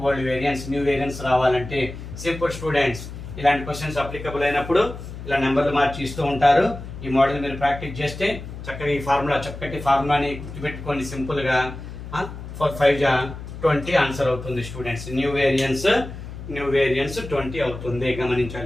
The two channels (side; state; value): left; noise; hum, 11 dB below the sound